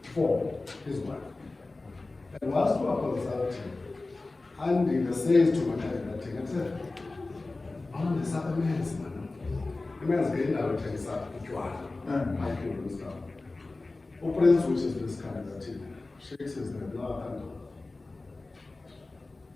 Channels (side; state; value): right; quieter; 3.3 dB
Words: for his wife. And whilst we are consulting, Andy says to my candidate, I said, "On the Southern man's man, the man's getting out of his side, I can do stuff. Prince, which is this candidate, shakes his head, no, I can't do it.